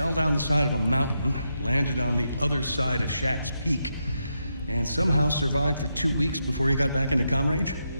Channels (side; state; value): both; inverted; correlation -0.84